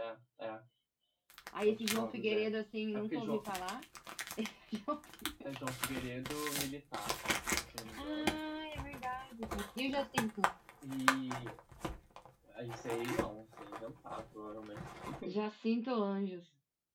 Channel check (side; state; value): both; identical; correlation 1.00